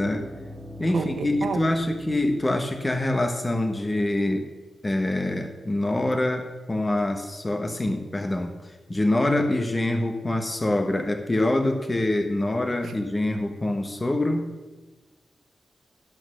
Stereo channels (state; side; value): normal; both; correlation 0.95